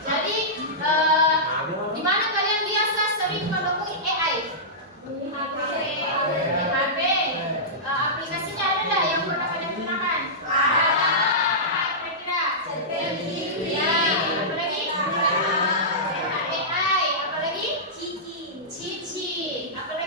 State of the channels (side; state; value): both; normal; correlation -0.15